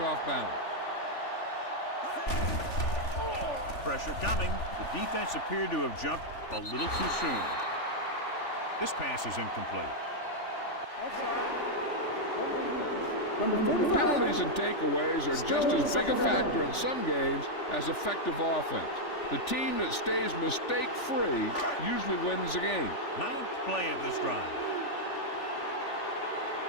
off balance. Pressure coming. The defense appeared to have jumped a little too soon. This pass is incomplete. Penalties and takeaways are just as big a factor in some games as effective offense. The team that stays mistake-free usually wins the game. Ninth play of this drive.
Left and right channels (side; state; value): right; late; 3.4 ms